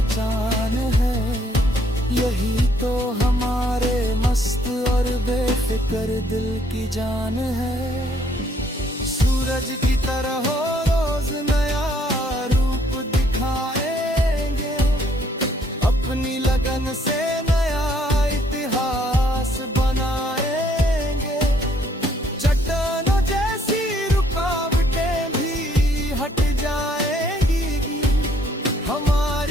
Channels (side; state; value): both; normal; correlation 0.66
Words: है। यही तो हमारे मस्त और बेफिक्र दिल की जान है। सूरज की तरह हो रोज नया रूप दिखाएंगे, अपनी लगन से नया इतिहास बनाएंगे। चट्टानों जैसी रुकावटें भी हट जाएंगी,